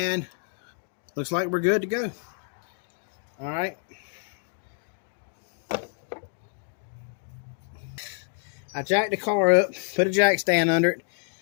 looks like we're good to go. All right. I jacked the car up, put a jack stand under it,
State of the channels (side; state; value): right; silent; 60 dB below the other